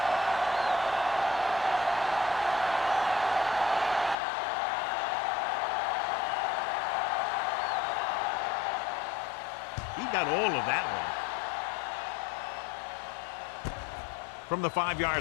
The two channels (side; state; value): right; drops out; at 4.2 s